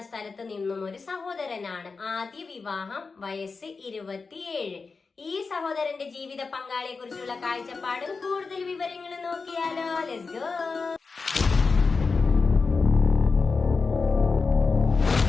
സ്ഥലത്ത് നിന്നും ഒരു സഹോദരനാണ്. ആദ്യ വിവാഹം, വയസ്സ് 27. ഈ സഹോദരന്റെ ജീവിത പങ്കാളിയെ കുറിച്ചുള്ള കാഴ്ചപ്പാടും കൂടുതൽ വിവരങ്ങളും നോക്കിയാലോ. Let's go.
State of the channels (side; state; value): right; quieter; 4.5 dB